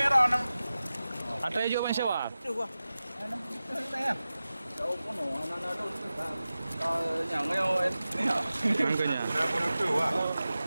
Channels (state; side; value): inverted; both; correlation -0.95